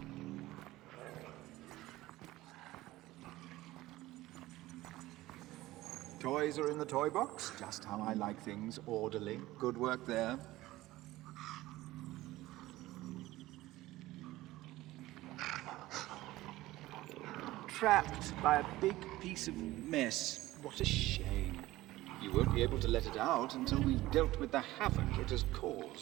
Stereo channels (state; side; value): quieter; left; 17.4 dB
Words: Toys are in the toy box, just how I like things, orderly. Good work there. Trapped by a big piece of mess. What a shame. You won't be able to let it out until we've dealt with the havoc it has